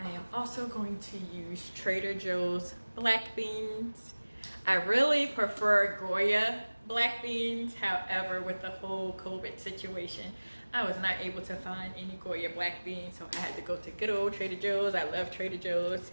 am also going to use Trader Joe's black beans. I really prefer Goya black beans. However, with the whole COVID situation, I was not able to find any Goya black beans, so I had to go to good old Trader Joe's. I love Trader Joe's.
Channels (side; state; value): both; inverted; correlation -1.00